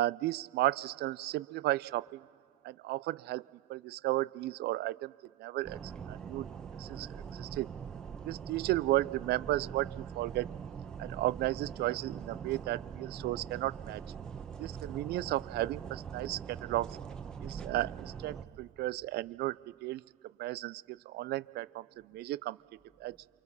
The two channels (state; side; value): quieter; left; 14.5 dB